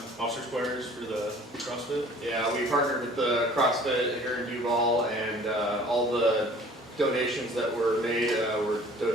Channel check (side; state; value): both; normal; correlation 0.50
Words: officer squares for the CrossFit. Yeah, we partnered with the CrossFit here in Duvall, and all the donations that were made were